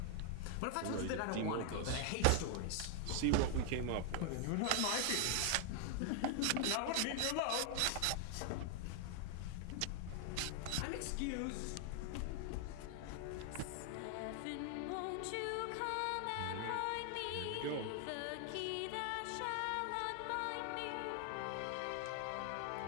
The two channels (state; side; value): different; both; correlation 0.00